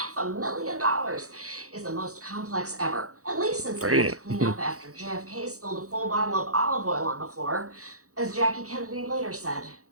$500,000 is the most complex ever, at least since they had to clean up after JFK spilled a full bottle of olive oil on the floor. As Jackie Kennedy later said,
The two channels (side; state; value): left; late; 0.65 ms